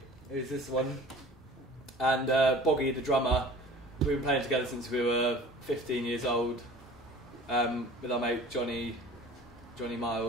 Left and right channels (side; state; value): both; normal; correlation 0.44